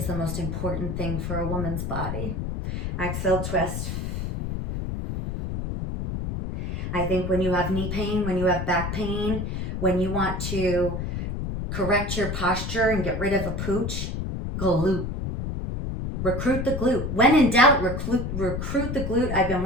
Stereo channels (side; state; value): left; noise; rumble, 3 dB below the sound